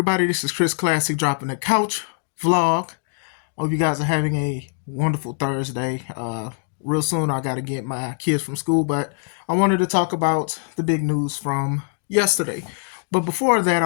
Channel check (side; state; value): right; silent; digital silence